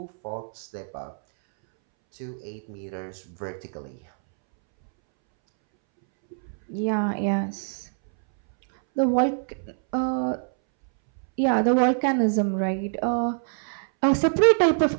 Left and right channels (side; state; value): left; silent; 62 dB below the other